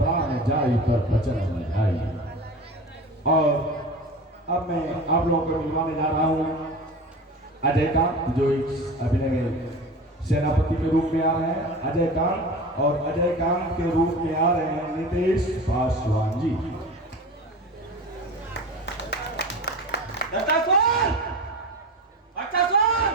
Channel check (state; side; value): normal; both; correlation 0.32